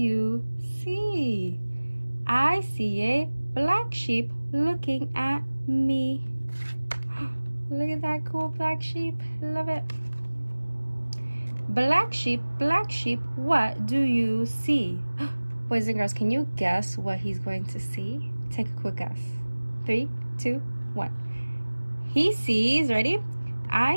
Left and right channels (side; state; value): both; inverted; correlation -1.00